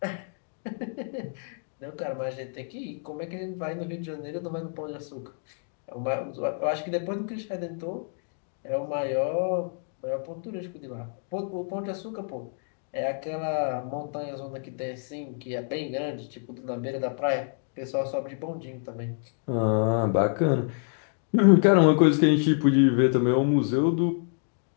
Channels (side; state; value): right; silent; 59 dB below the other